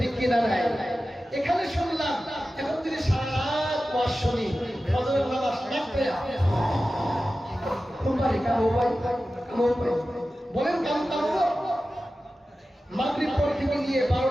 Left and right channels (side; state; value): both; normal; correlation 0.94